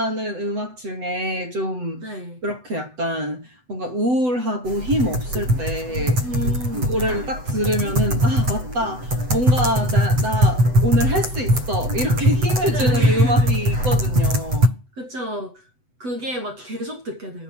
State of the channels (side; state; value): left; late; 8.0 ms